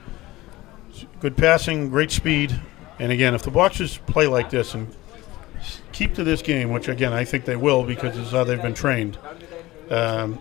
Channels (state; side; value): quieter; right; 18.5 dB